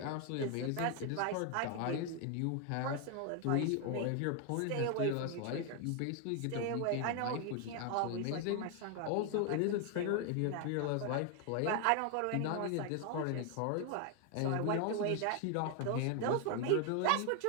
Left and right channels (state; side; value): different; both; correlation 0.01